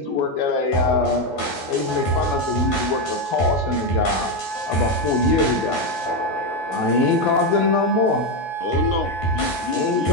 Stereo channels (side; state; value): right; late; 12 ms